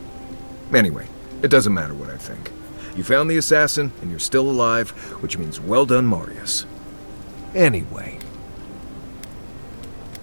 Anyway, it doesn't matter what I think. You found the assassin, and you're still alive, which means well done, Marius. Anyway.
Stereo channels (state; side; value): inverted; both; correlation -1.00